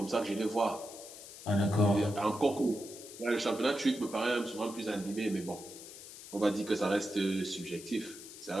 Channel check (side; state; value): left; noise; hiss, 14 dB below the sound